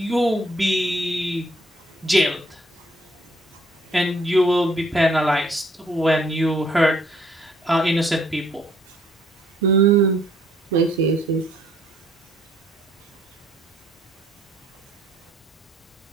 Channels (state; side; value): normal; both; correlation 0.65